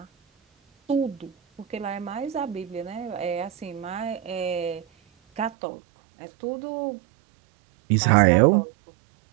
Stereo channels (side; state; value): left; drops out; at 5.5 s